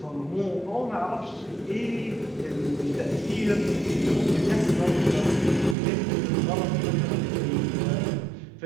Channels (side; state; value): left; drops out; at 5.8 s